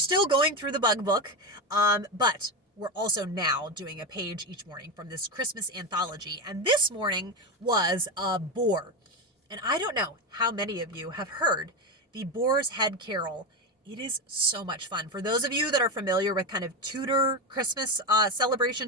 going through the bug book. But we're also now doing a page each morning from this Christmas anthology. And this morning was a boar. And I don't know how many of you have heard the Boar's Head Carol. It is so much fun. For those of you that are familiar with kind of Tudor Christmas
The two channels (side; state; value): both; normal; correlation 0.15